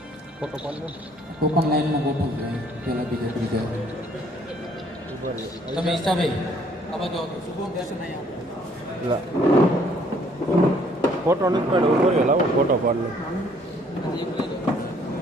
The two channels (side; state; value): both; normal; correlation 0.62